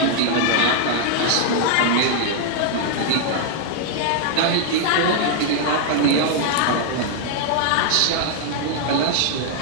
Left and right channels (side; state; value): both; different; correlation 0.00